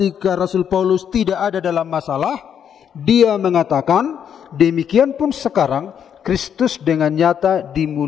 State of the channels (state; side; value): quieter; right; 8.5 dB